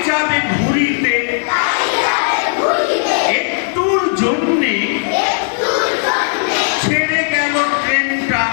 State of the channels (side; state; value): right; silent; digital silence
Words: যাবে ঘুরিতে। একটুর জন্যে ছেড়ে গেল ট্রেনটা।